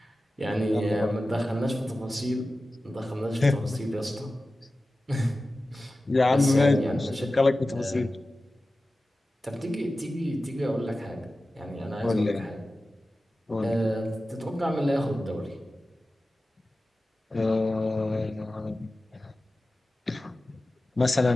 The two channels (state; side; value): normal; both; correlation 0.95